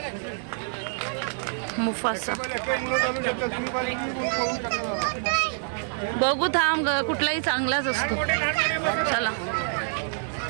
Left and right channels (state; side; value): silent; left; digital silence